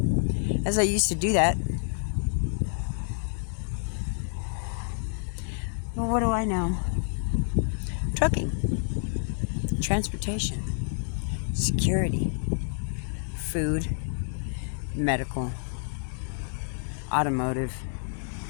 As I used to do that. Well, what do I know? Trucking, transportation, security, food, medical, automotive,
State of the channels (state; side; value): silent; right; digital silence